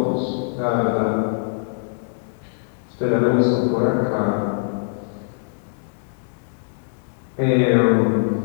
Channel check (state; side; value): silent; right; digital silence